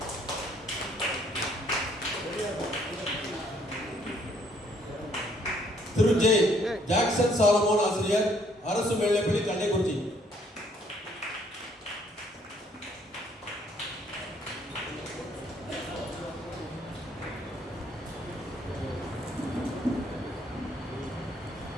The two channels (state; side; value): normal; both; correlation 0.65